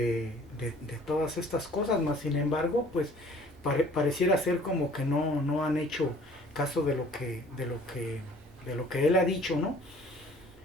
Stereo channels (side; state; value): both; normal; correlation 0.53